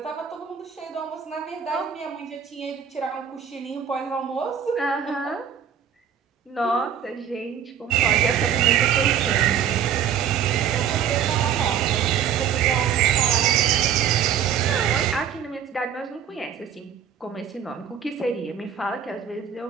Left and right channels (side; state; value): left; quieter; 8.5 dB